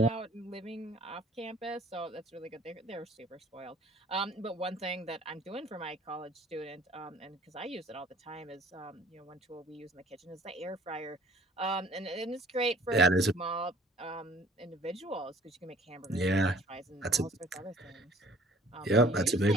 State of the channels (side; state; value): both; normal; correlation 0.53